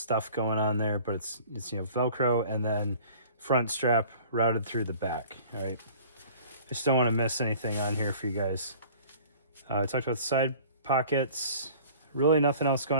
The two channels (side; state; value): both; inverted; correlation -0.47